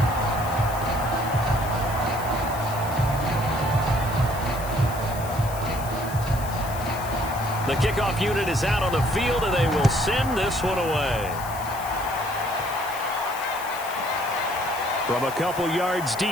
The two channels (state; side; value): noise; left; hiss, 14 dB below the sound